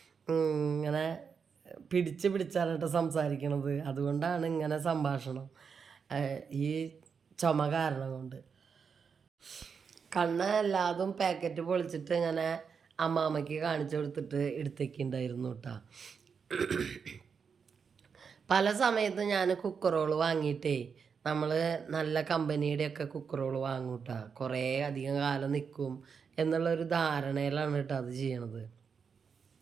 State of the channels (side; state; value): left; quieter; 6.1 dB